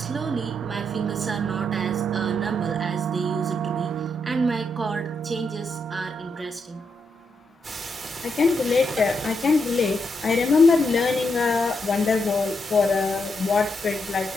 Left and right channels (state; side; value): normal; both; correlation 0.81